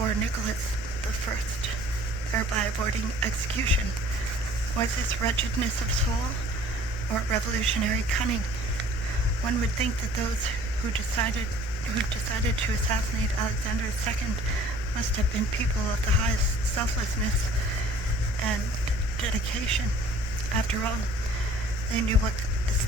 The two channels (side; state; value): both; normal; correlation 0.52